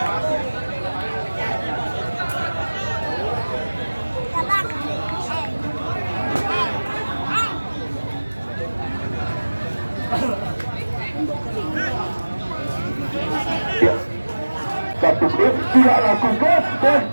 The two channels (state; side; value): inverted; both; correlation -1.00